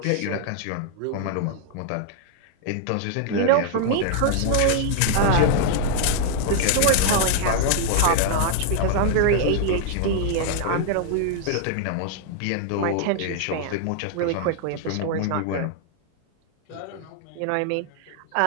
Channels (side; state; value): both; different; correlation -0.01